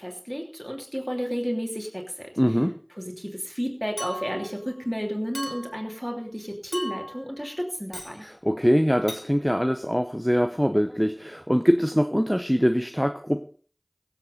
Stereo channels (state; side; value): identical; both; correlation 1.00